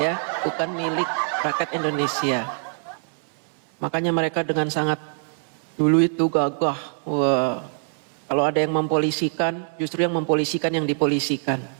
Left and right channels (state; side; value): silent; left; 63 dB below the other